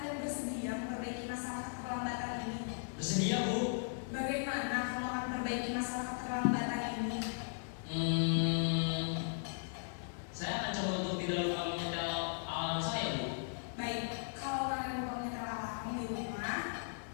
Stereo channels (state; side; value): silent; right; digital silence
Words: bersedia memperbaiki masalah keterlambatan ini? Bersedia Bu. Bagaimana kamu akan memperbaiki masalah keterlambatan ini? Saya akan coba untuk tidak lupa menyetel alarm saya Bu. Baik, kalau Naren lupa menyetel alarm di rumah,